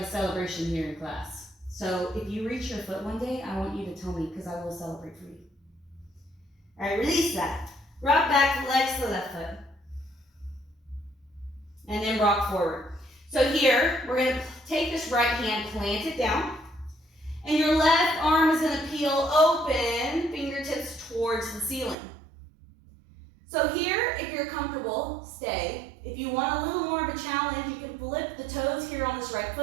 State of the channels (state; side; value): drops out; left; at 22.0 s